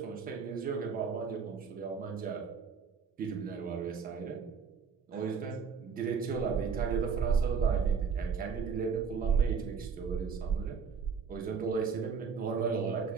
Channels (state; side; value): quieter; left; 6.0 dB